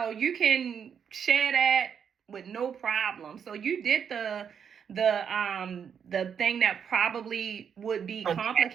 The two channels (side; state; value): left; quieter; 7.5 dB